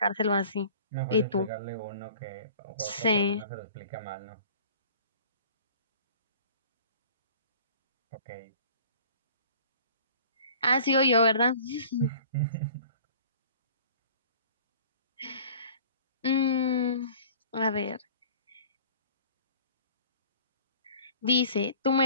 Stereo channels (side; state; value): both; inverted; correlation -0.47